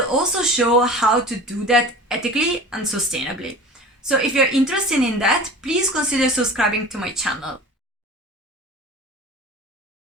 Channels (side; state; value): both; normal; correlation 0.38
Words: also show how to do that ethically and sustainably. So if you're interested in that, please consider subscribing to my channel.